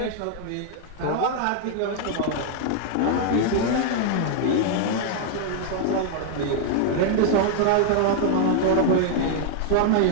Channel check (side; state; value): both; different; correlation -0.01